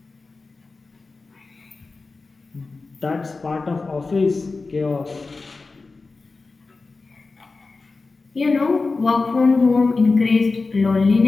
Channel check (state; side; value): quieter; right; 3.9 dB